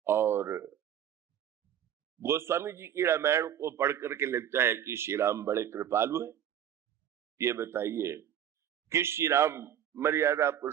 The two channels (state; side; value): quieter; left; 9.9 dB